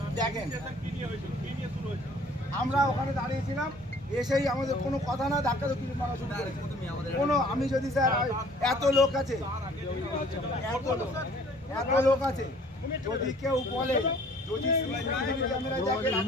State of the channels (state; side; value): normal; both; correlation 0.54